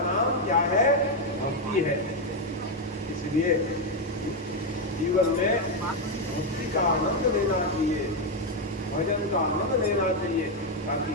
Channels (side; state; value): both; normal; correlation 0.04